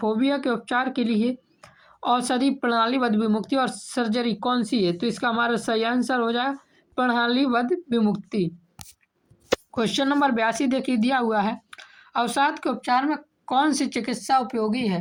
के उपचार के लिए औषधि, प्रणालीबद्ध विमुक्ति और सर्जरी कौन सी है? तो इसका हमारा सही आंसर हो जाएगा प्रणालीबद्ध विमुक्ति। क्वेश्चन नंबर 82 देखिए दिया हुआ है, अवसाद के उपचार में कौन सी चिकित्सा उपयोगी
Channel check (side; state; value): both; identical; correlation 1.00